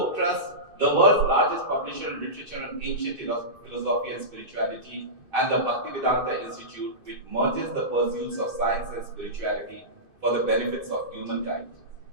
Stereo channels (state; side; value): late; left; 2.5 ms